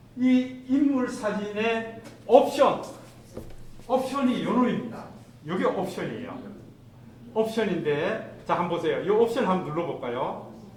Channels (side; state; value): both; identical; correlation 1.00